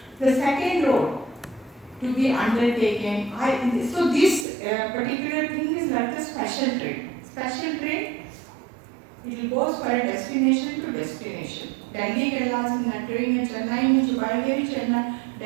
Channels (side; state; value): left; drops out; at 4.5 s